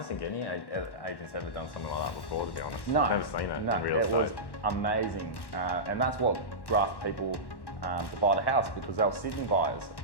think any agent's ever done something like that before, to be honest. No. I've never seen that in real estate. It was amazing, and that's what grasped people to buy the house, because they were Sydney buyers,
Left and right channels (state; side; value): late; right; 1.1 ms